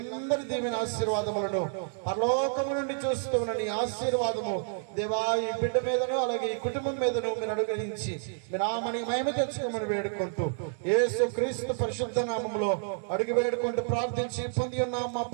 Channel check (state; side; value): silent; left; digital silence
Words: దీవెన ఆశీర్వాదములను పరలోకము నుండి చూస్తూ ఉన్న నీ ఆశీర్వాదము దేవా ఈ బిడ్డ మీదను అలాగే ఈ కుటుంబం మీదను మీరు అనుగ్రహించి మీ నామని మహిమ తెచ్చుకోమని వేడుకుంటూ యేసు క్రీస్తు పరిశుద్ధ నామములో అడుగు వేడుకుంటూ ప్రార్థించి పొంది ఉన్నాం మా